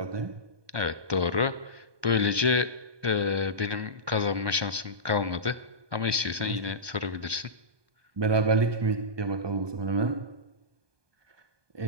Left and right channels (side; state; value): left; late; 1.2 ms